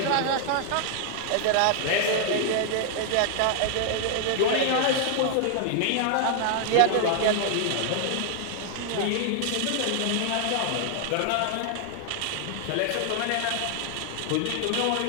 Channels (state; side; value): different; both; correlation 0.00